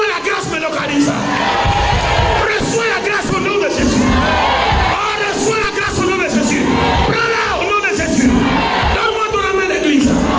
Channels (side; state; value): both; identical; correlation 1.00